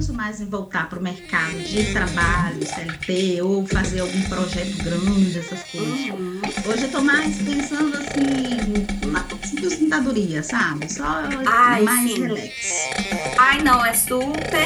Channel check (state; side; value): identical; both; correlation 1.00